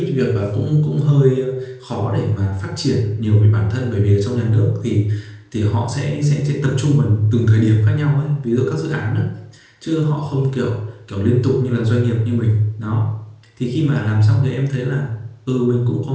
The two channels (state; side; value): identical; both; correlation 1.00